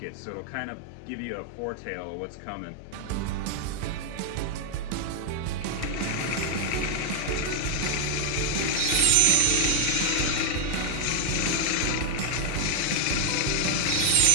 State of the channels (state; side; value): different; both; correlation 0.01